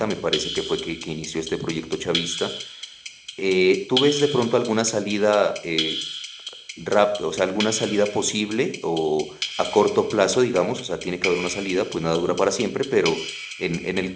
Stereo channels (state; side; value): identical; both; correlation 1.00